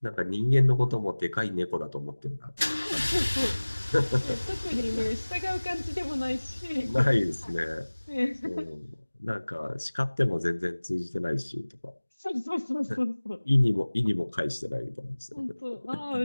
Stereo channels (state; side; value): inverted; both; correlation -1.00